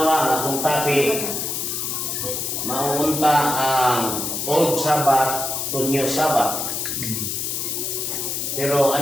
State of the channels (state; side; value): noise; left; hiss, 2 dB below the sound